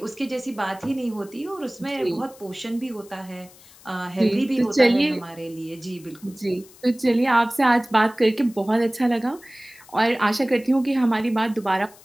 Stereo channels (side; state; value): left; noise; hiss, 24 dB below the sound